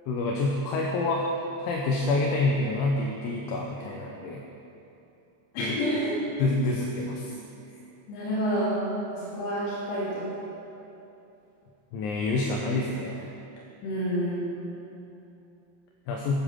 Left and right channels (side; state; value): right; late; 29 ms